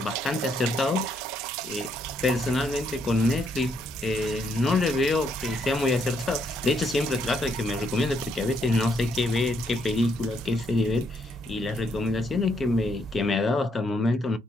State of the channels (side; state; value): both; normal; correlation 0.74